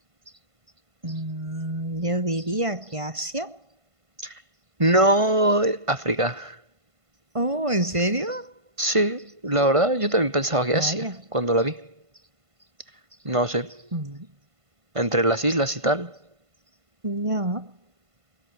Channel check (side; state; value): left; late; 1.5 ms